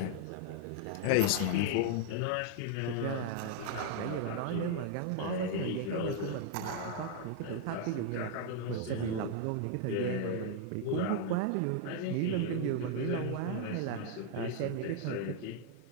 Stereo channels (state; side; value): different; both; correlation 0.00